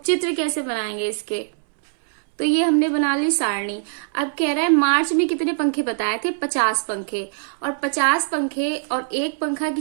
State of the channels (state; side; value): silent; left; 64 dB below the other